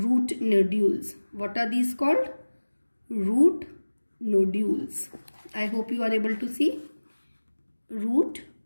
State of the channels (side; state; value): both; inverted; correlation -1.00